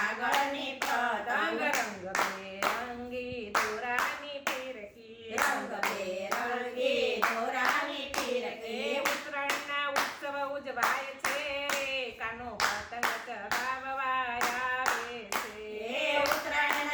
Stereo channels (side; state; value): both; identical; correlation 1.00